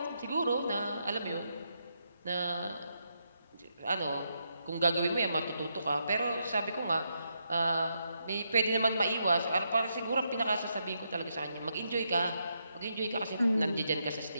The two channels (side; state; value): both; inverted; correlation -0.80